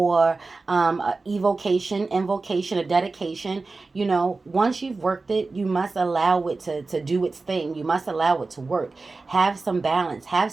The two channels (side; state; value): left; quieter; 3.7 dB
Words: a evocation, invocation, a dedication. You know, once you've worked it, you must allow it to do its thing. You must allow it to work. Have some balance. Have